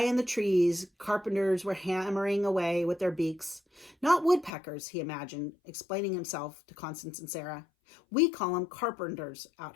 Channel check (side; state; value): right; drops out; at 4.5 s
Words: in the trees, carpenters were hammering away with their beaks. "Not woodpeckers," he imagined, explaining himself to Constance and Sarah. "We call them carpenters